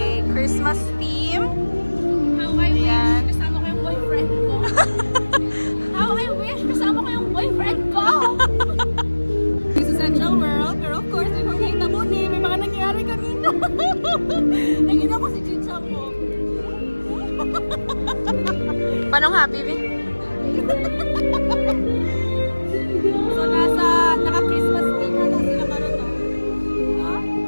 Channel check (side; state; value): both; inverted; correlation -1.00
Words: Christmas theme. How I wish kasama ko yung boyfriend ko. How I wish kasama ko yung boyfriend ko. This is Central World, pero of course, may mga ni, may mga nangyari kanina. Nakita ko si Chicha mo. Panong happy, Vi? So, naka-Christmas theme na daw sila karon, no? No?